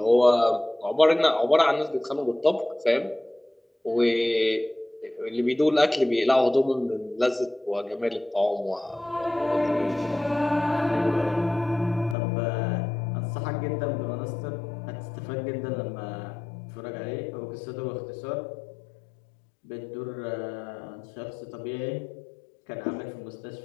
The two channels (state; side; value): drops out; right; at 12.2 s